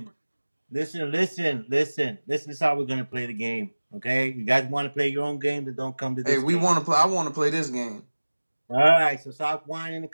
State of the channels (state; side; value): inverted; both; correlation -1.00